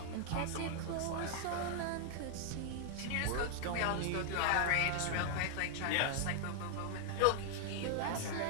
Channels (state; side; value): different; both; correlation 0.00